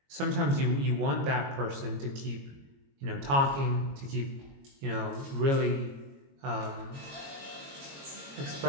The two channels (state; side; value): late; left; 22 ms